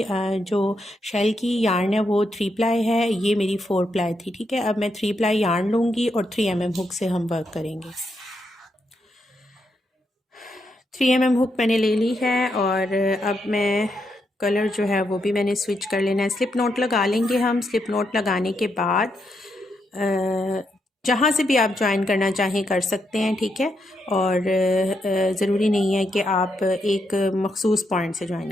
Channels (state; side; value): normal; both; correlation 0.81